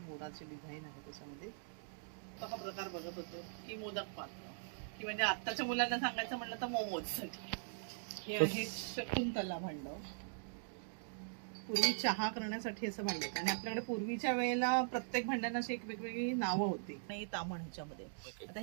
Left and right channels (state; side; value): silent; left; digital silence